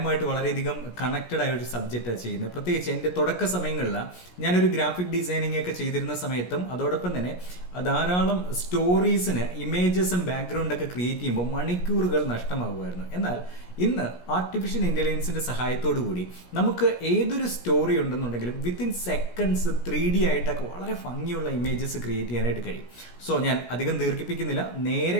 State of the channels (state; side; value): late; right; 17 ms